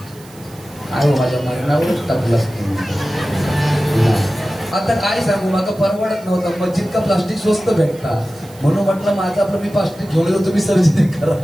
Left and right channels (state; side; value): noise; right; hiss, 24 dB below the sound